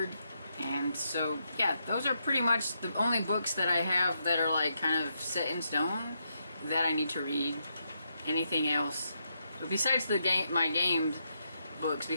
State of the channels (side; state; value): both; inverted; correlation -0.81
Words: And so yeah, those are pretty much the only books that I have that are like kind of set in stone that I need to read. Anything else, but besides my gamed books,